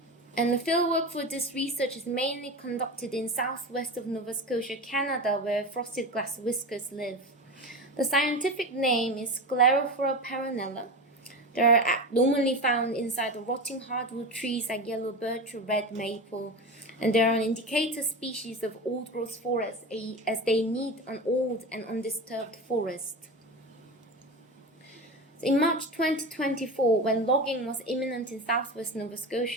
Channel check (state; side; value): normal; both; correlation 0.25